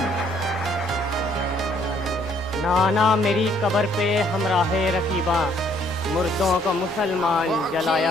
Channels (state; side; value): normal; both; correlation 0.64